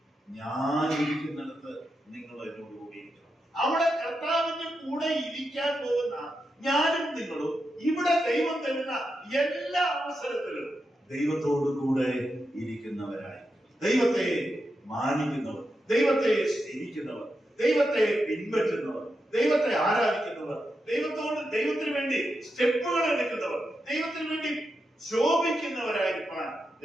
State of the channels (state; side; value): normal; both; correlation 0.87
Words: ഞാൻ ഇരിക്കുന്നിടത്ത് നിങ്ങൾ എന്നോട് കൂടി ഇരിക്കണം. അവിടെ കർത്താവിന്റെ കൂടെ ഇരിക്കാൻ പോകുന്ന ഞാനും നിങ്ങളും ഇവിടെ ദൈവം തരുന്ന എല്ലാ അവസരത്തിലും ദൈവത്തോടു കൂടെ ഇരിക്കുന്നവരായി, ദൈവത്തെ മാനിക്കുന്നവർ, ദൈവത്തെ സ്നേഹിക്കുന്നവർ, ദൈവത്തെ പിൻപറ്റുന്നവർ, ദൈവത്തെ ആരാധിക്കുന്നവർ, ദൈവത്തിന് വേണ്ടി സ്റ്റെപ്പുകൾ എടുക്കുന്നവർ, ദൈവത്തിന് വേണ്ടി ശോഭിക്കുന്നവരായിരിക്കാൻ